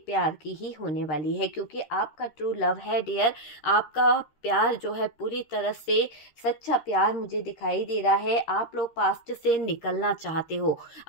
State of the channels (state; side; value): late; right; 13 ms